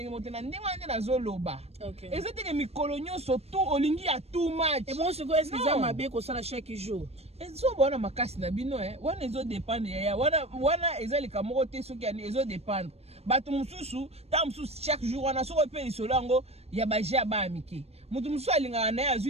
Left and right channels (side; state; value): left; late; 0.30 ms